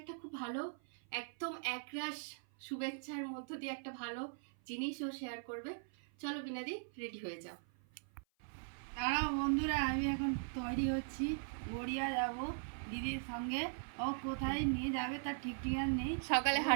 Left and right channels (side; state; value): left; silent; 51 dB below the other